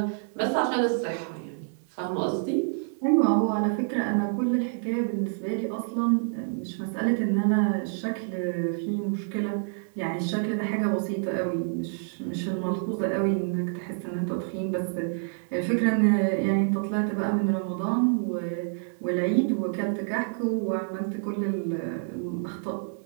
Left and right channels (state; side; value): silent; left; digital silence